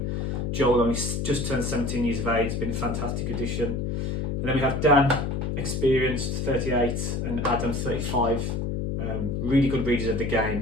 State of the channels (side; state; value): left; noise; hum, 1 dB below the sound